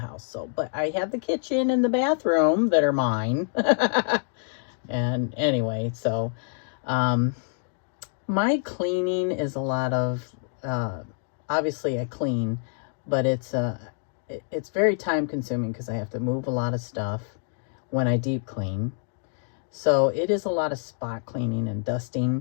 So, but I have the kitchen and the bathroom that are mine. And anyway, so my cleaning is a lot of obviously I clean, but it's very time consuming because I have to move a lot of stuff when I deep clean. So it is a lot of spot cleaning and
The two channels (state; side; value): silent; right; digital silence